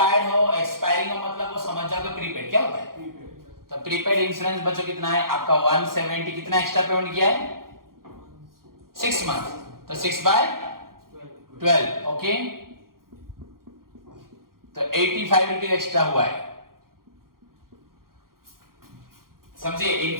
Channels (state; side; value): late; left; 0.92 ms